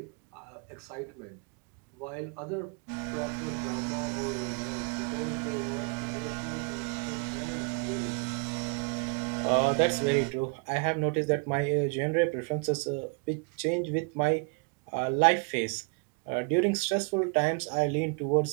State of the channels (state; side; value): quieter; left; 34.8 dB